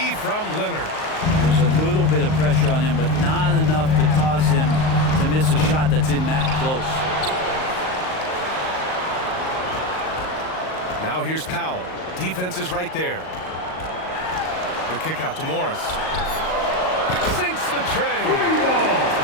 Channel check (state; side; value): late; right; 38 ms